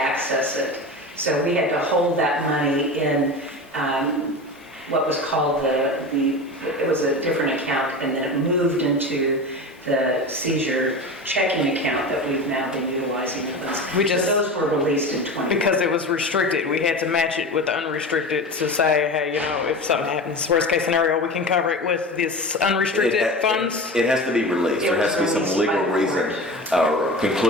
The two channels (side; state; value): both; normal; correlation 0.29